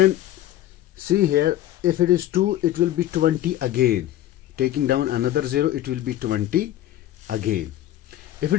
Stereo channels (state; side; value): quieter; right; 13.4 dB